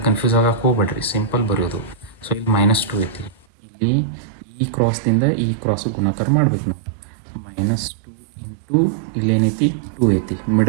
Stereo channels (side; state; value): left; drops out; at 3.5 s